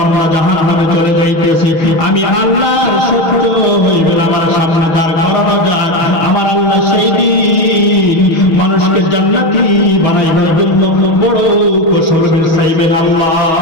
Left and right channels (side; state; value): right; late; 6.3 ms